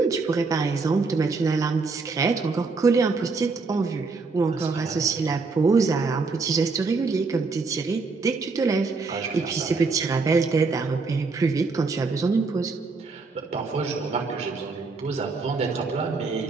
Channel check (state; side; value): quieter; left; 4.2 dB